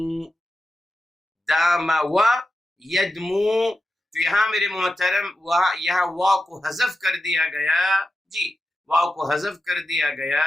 داما و یدمو، تو یہاں میرے محترم یہاں واو کو حذف کر دیا گیا جی، واو کو حذف کر دیا گیا،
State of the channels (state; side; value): normal; both; correlation 0.91